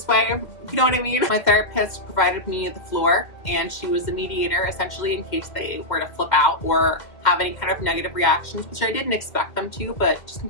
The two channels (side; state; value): right; late; 2.1 ms